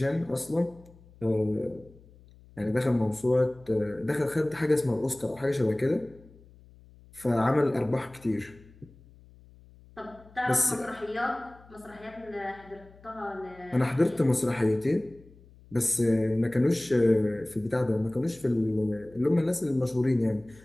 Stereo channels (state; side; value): noise; left; hum, 24 dB below the sound